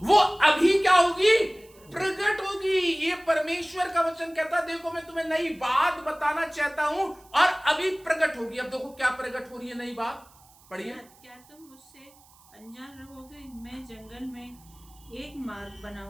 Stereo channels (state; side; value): noise; right; hiss, 27 dB below the sound